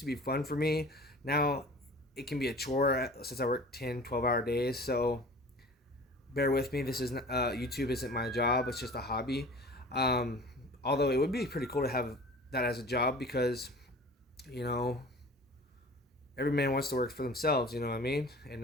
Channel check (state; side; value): normal; both; correlation 0.42